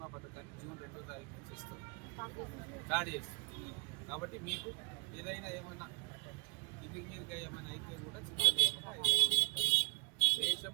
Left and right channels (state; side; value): quieter; left; 29.0 dB